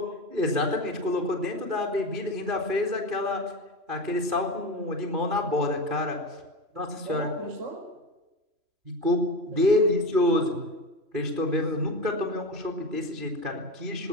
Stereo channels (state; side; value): late; left; 3.0 ms